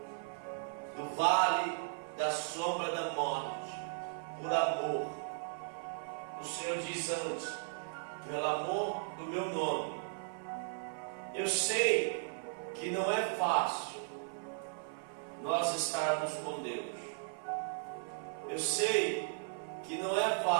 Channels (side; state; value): left; silent; 53 dB below the other